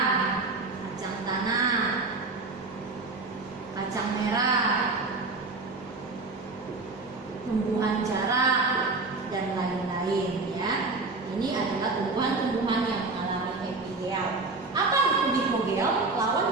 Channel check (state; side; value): quieter; left; 3.6 dB